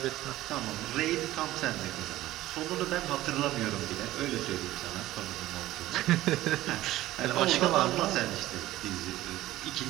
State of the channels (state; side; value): quieter; left; 15.6 dB